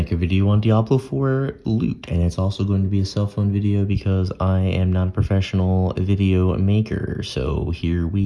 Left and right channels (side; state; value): both; identical; correlation 1.00